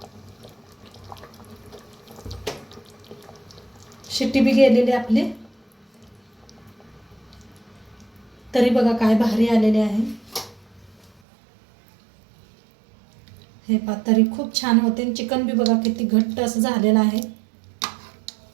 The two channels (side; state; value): left; drops out; at 11.2 s